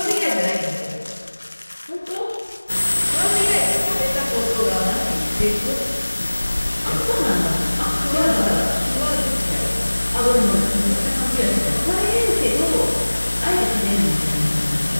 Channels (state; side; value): inverted; both; correlation -1.00